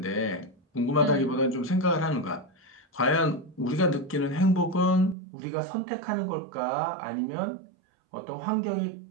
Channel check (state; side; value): drops out; left; at 5.2 s